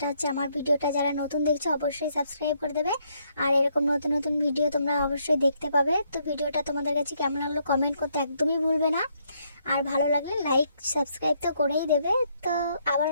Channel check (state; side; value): inverted; both; correlation -0.72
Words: হচ্ছে, আমার ভিডিওটা যারা নতুন দেখছো অবশ্যই সাবস্ক্রাইব করে দেবে। আর এরকম নতুন নতুন ভিডিও তোমরা অবশ্যই দেখতে পাবে। তো ভিডিওটা তোমাদের কাছে কেমন লাগলো কমেন্ট করতে একদমই ভুলবে না। আর ভালো লাগলে লাইক সাবস্ক্রাইব তো করেই দেবে। তো আবার